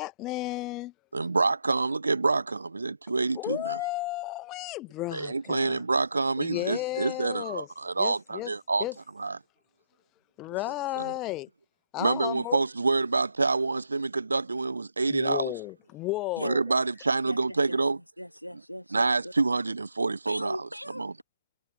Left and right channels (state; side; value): inverted; both; correlation -0.80